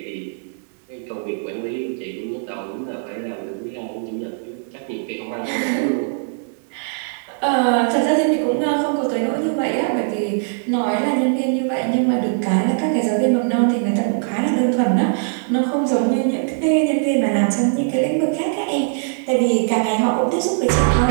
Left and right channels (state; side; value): silent; left; digital silence